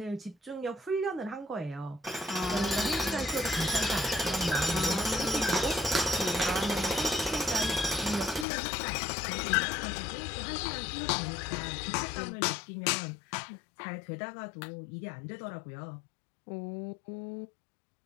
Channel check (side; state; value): right; drops out; at 8.5 s